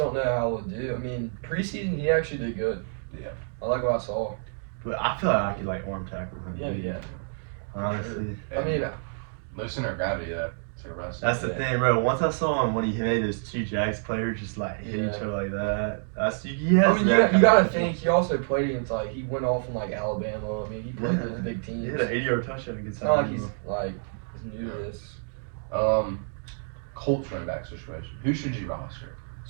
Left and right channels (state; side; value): silent; left; digital silence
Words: know how he'll do. I mean, preseason he actually did good. Yeah. I like what I saw. But I feel like I could arm tackle him. Yeah. Honestly. I mean, no center of gravity that. That's the thing, bro. Once I saw him when he made those two Jags players just hit each other like that. You gotta think he also played against he went off in Alabama. I mean he played those big teams. He had an 80-yard touchdown against It's not Alabama. he's new to this. Colts running back situation. Who should you roster?